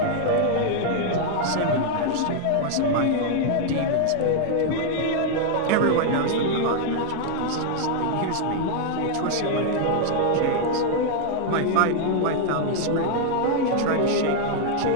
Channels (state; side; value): different; both; correlation 0.00